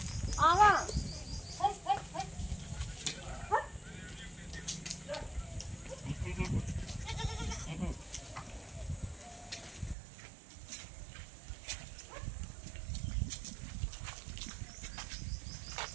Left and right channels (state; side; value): drops out; left; at 10.0 s